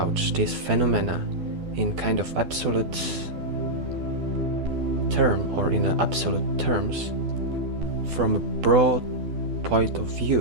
this phenomena in kind of absolute term or in absolute terms, from a broad point of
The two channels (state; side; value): late; left; 12 ms